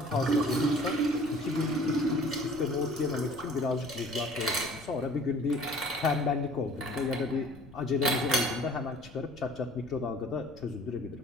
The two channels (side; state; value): left; noise; rumble, 20 dB below the sound